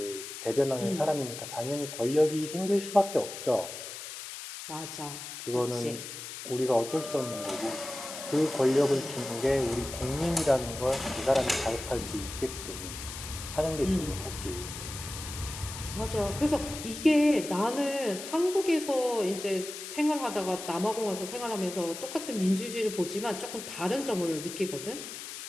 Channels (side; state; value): left; noise; hiss, 9 dB below the sound